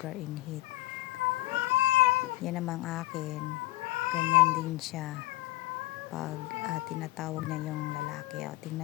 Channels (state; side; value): quieter; right; 19.0 dB